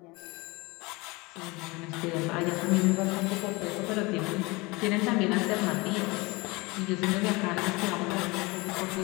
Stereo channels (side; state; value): right; quieter; 24.5 dB